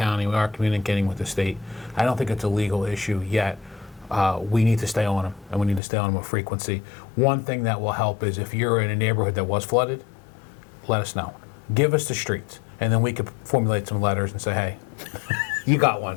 we are communicating with the state. I don't think it's a legal issue yet. We need to stay on them, and we need to stay on them with frequency. One thing that will help is if you're in a neighborhood that was flooded, let us know. Give us the streets, and then we could formulate some letters and say, hey, you got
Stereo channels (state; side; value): drops out; right; at 5.8 s